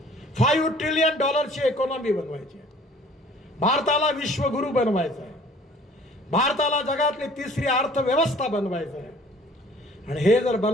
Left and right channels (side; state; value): both; normal; correlation 0.53